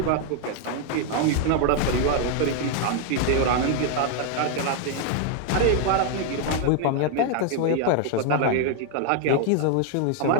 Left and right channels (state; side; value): different; both; correlation 0.00